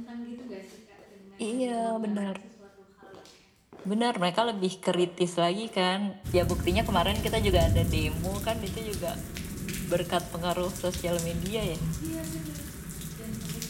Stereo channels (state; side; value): identical; both; correlation 1.00